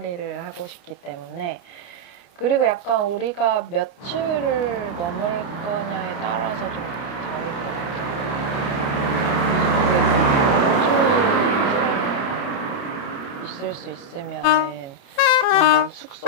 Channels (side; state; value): right; late; 30 ms